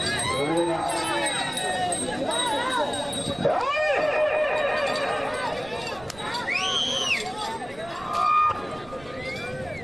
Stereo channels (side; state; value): right; noise; rumble, 20 dB below the sound